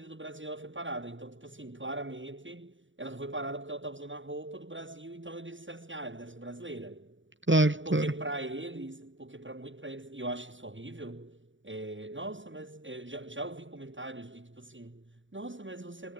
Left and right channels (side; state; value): left; late; 0.55 ms